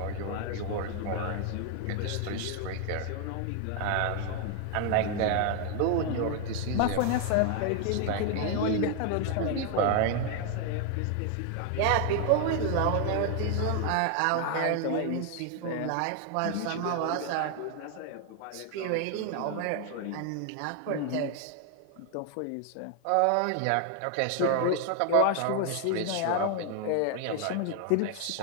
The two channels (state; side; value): different; both; correlation 0.00